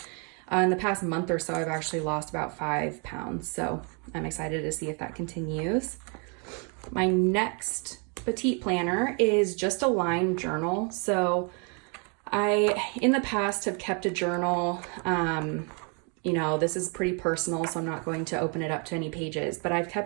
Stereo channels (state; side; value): quieter; left; 36.7 dB